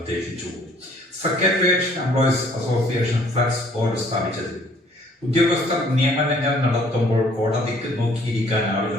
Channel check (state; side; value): normal; both; correlation 0.59